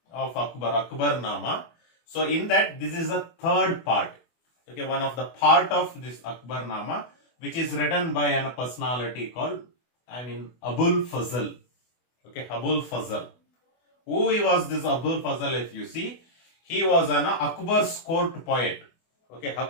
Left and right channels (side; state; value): right; late; 24 ms